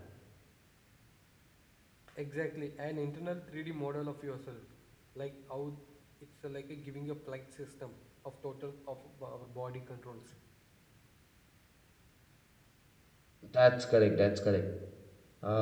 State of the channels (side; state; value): both; identical; correlation 1.00